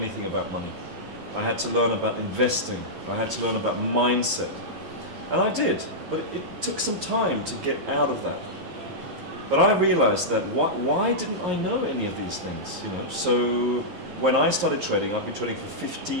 about money. I had to learn about investing. I had to learn about mindset. And I did, but it took some time to get out of that. But I realized that why didn't I know any of these things, So when I started trading, I've been trading for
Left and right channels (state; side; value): late; left; 11 ms